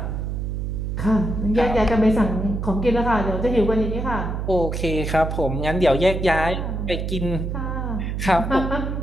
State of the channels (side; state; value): right; noise; hum, 3 dB below the sound